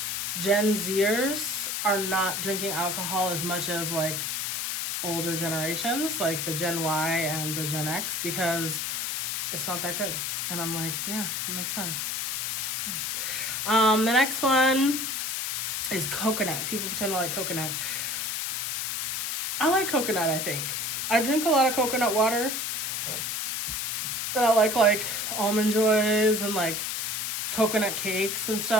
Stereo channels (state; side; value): noise; left; hiss, 2 dB below the sound